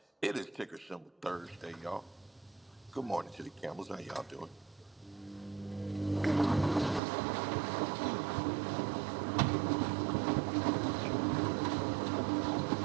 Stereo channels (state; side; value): drops out; left; at 7.0 s